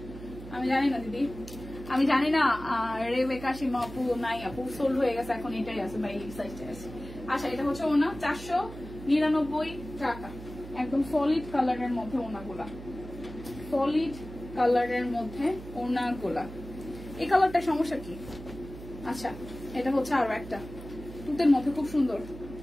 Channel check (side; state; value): right; noise; hum, 13 dB below the sound